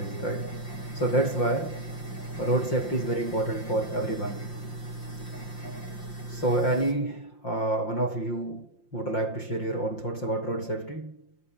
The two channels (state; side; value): late; right; 5.7 ms